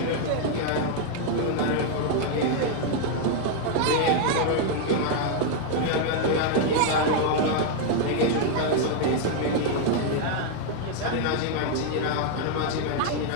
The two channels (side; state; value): both; different; correlation 0.00